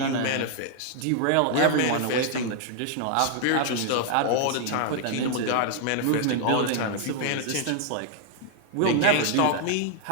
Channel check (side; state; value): both; different; correlation 0.00